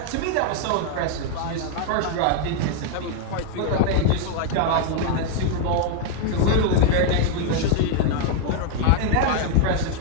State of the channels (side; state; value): both; different; correlation 0.00